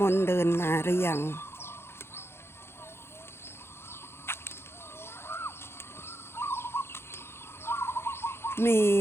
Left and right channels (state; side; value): late; right; 0.12 ms